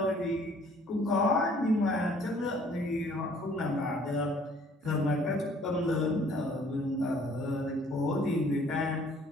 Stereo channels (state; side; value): normal; both; correlation 0.58